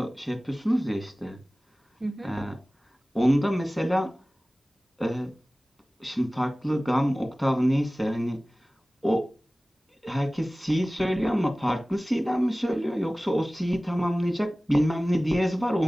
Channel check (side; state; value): both; normal; correlation 0.98